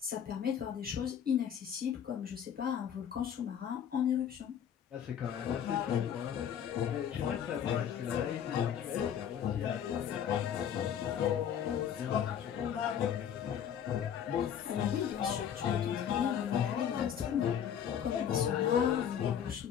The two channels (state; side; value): quieter; right; 8.8 dB